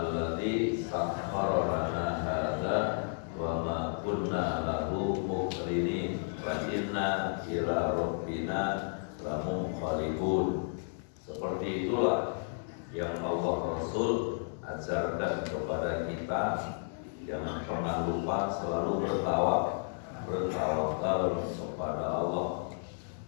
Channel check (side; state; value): right; silent; digital silence